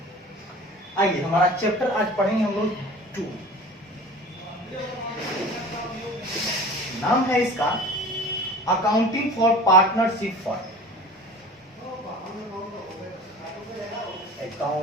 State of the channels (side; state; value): both; normal; correlation 0.40